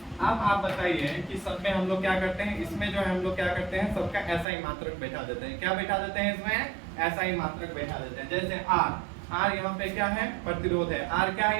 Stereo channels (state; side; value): drops out; left; at 4.5 s